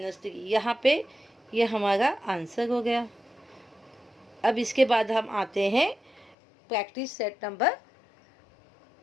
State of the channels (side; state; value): right; drops out; at 6.4 s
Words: 3, यहाँ पे ये हमारा आंसर हो गया। अब इसके बाद हम आते हैं प्रैक्टिस सेट नंबर